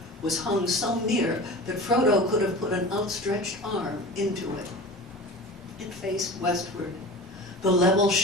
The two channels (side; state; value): both; normal; correlation 0.35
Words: was hung so near that Frodo could have put an outstretched arm into it. It faced westward. The level